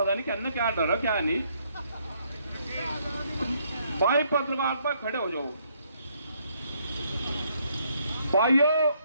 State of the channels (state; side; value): inverted; both; correlation -0.70